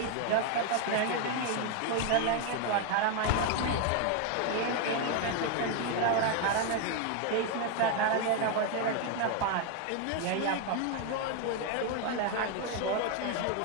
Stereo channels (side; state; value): both; different; correlation 0.01